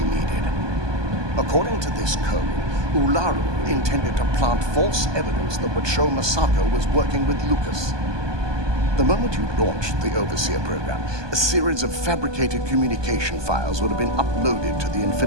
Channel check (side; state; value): left; late; 1.2 ms